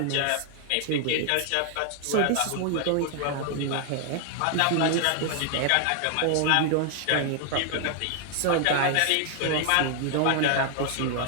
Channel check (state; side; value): different; both; correlation 0.00